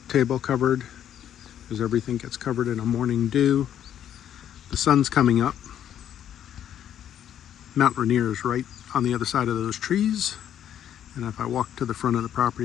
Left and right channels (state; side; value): quieter; right; 10.2 dB